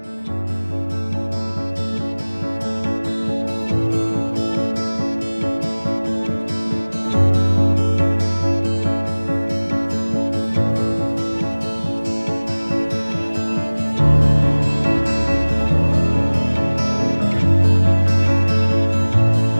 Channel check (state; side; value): inverted; both; correlation -1.00